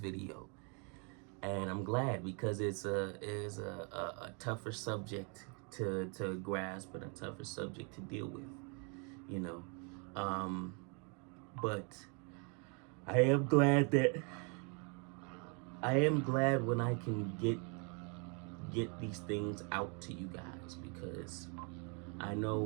and I'm glad, because it's a tougher subject to grasp and a tougher subject to deal with, you know. But I am glad when I can get these things out to you guys, because I know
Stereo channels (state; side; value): quieter; left; 35.9 dB